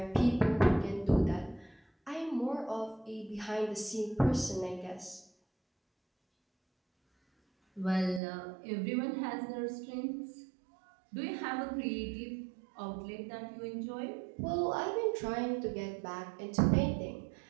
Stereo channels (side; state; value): left; drops out; at 8.2 s